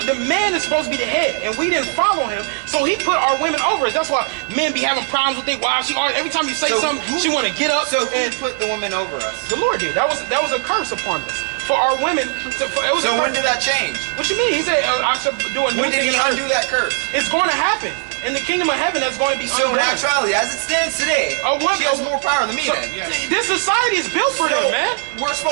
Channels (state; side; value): silent; left; digital silence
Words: man is supposed to be the head, and we didn't follow him, so he put our women over us. That's why men be having problems with their wives. Every time you say something, she want to get up. So and who put the women over us? the Lord did. That was a curse upon us for our women. So when did that change? What you mean? He said I should do a new When did thing he in earth. undo that curse? It's going to happen. In the kingdom of heaven, that's going to be So in undone. actuality, as it stands today, she has more power than me. So, then. Yes. this society is built for them, man. We're